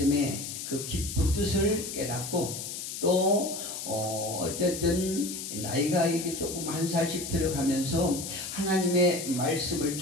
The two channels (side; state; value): left; noise; hiss, 7 dB below the sound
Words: 그 깊은 뜻을 깨닫고, 또 어쨌든 나이가 이렇게 조금 한 살씩 들어가면서 하나님의 말씀을